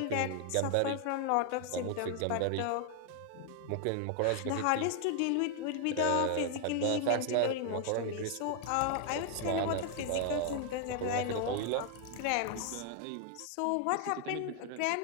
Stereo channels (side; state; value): both; different; correlation 0.00